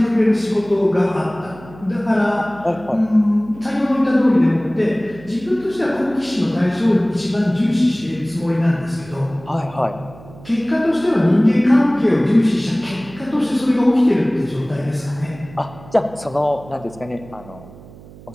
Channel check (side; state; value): right; noise; hum, 20 dB below the sound